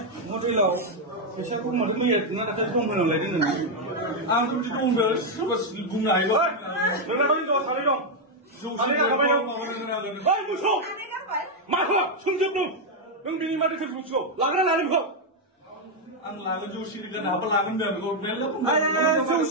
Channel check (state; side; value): normal; both; correlation 0.01